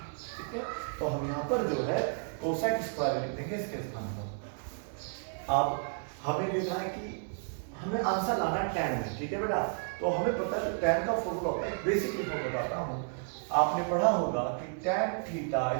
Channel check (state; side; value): silent; left; 56 dB below the other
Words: ठीक है, तो हम यहाँ पर जो है कोसेक स्क्वायर लिख देंगे इसके स्थान पर। अब हमें देखना है कि हमें आंसर लाना है tan में। ठीक है बेटा, तो हमें पता है tan का फॉर्मूला होता है, बेसिकली मैं बताता हूँ। आपने पढ़ा होगा कि tan theta